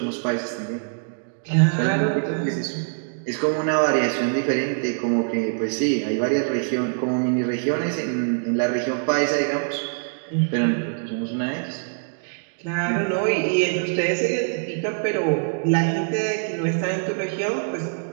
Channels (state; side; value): silent; left; digital silence